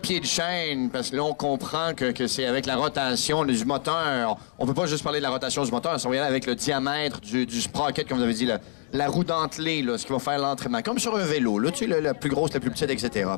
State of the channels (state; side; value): silent; right; digital silence